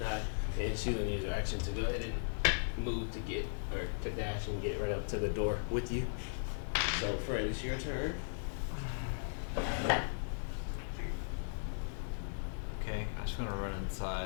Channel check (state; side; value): silent; right; 53 dB below the other